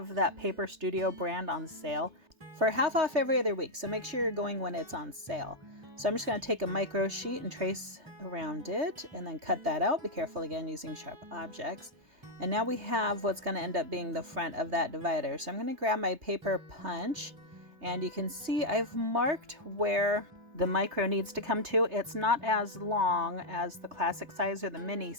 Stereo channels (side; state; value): left; late; 3.3 ms